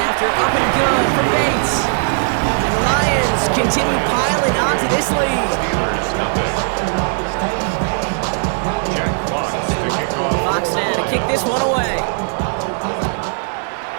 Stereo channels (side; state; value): left; silent; 62 dB below the other